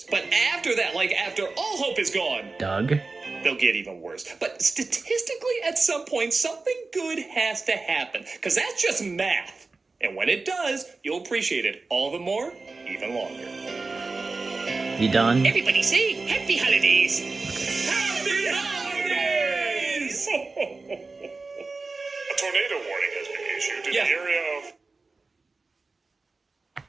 But after that, like after all hope is gone, Doug? they'll get even worse. But statistically, at some point, something good has to happen. Because that's just math. And when it does, you'll appreciate it all the more, even longer. You done? Everybody say Happy Holidays. Happy Holidays! A tornado warning has been issued in Yeah. the area of...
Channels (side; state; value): left; quieter; 3.8 dB